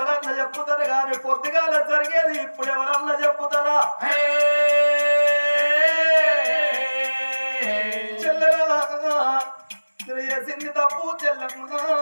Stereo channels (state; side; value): inverted; both; correlation -1.00